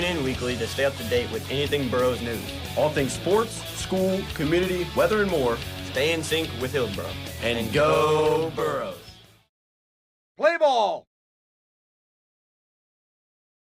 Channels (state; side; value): identical; both; correlation 1.00